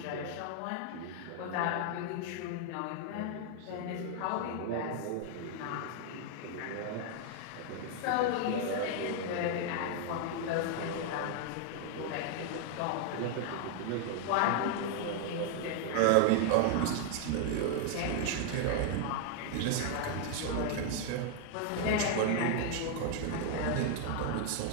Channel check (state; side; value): different; both; correlation 0.00